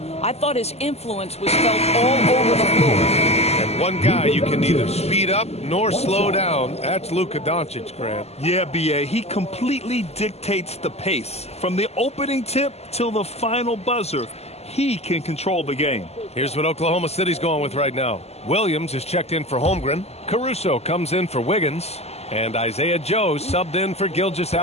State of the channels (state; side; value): late; right; 0.30 ms